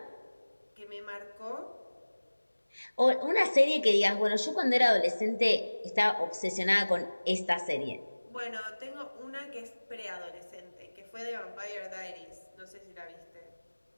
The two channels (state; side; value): inverted; both; correlation -1.00